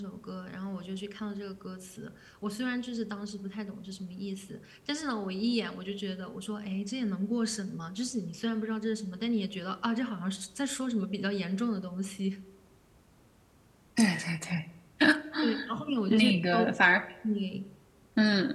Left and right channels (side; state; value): both; identical; correlation 1.00